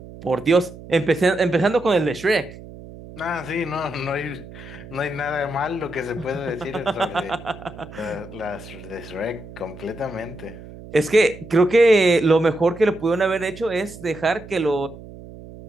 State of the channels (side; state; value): right; noise; hum, 16 dB below the sound